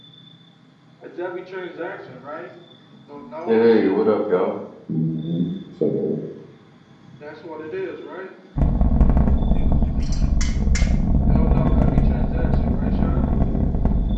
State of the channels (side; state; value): both; identical; correlation 1.00